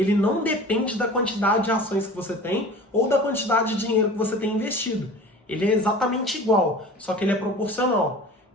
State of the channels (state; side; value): normal; both; correlation 0.40